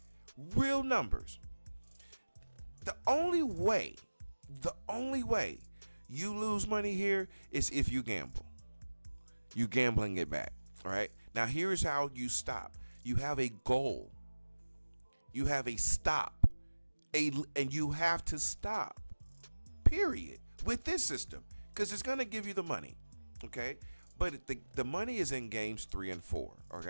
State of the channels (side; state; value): both; inverted; correlation -1.00